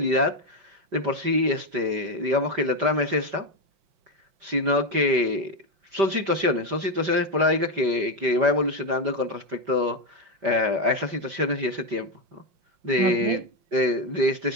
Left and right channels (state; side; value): late; left; 5.1 ms